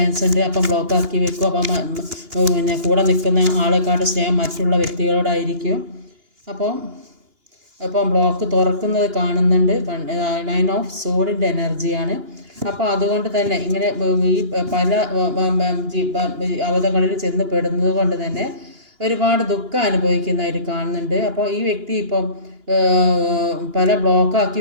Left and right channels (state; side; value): late; left; 2.9 ms